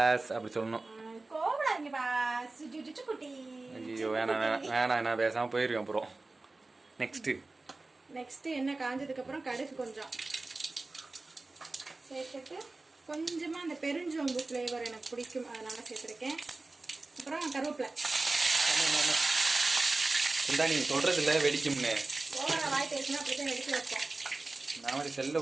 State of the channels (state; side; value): quieter; left; 3.3 dB